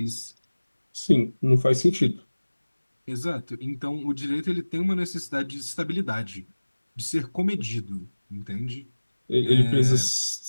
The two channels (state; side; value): inverted; both; correlation -1.00